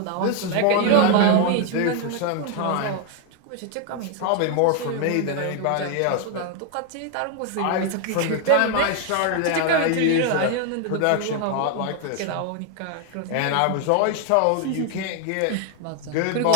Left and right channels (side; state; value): both; different; correlation 0.01